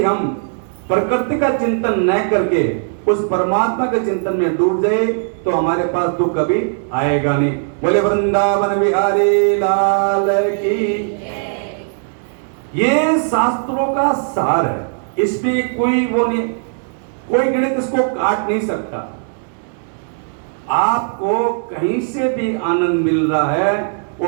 हम प्रकृति का चिंतन न करके उस परमात्मा के चिंतन में डूब जाए तो हमारे पास दुख कभी आएगा नहीं। बोले वृंदावन बिहारी लाल की। ये शास्त्रों का सार है, इसमें कोई वो नहीं, कोई गणित इसको काट नहीं सकता। आपको कहीं से भी आनंद मिल रहा है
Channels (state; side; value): silent; left; 67 dB below the other